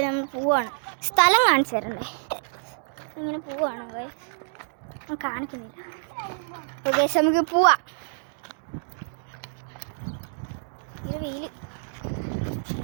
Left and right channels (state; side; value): silent; left; digital silence